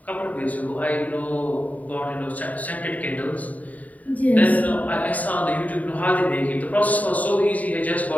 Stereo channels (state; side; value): late; right; 0.073 ms